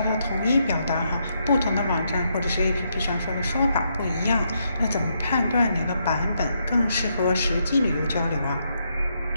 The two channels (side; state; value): both; inverted; correlation -0.78